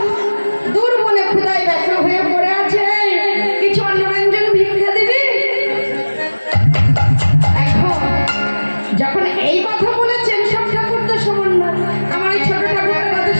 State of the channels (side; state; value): both; inverted; correlation -1.00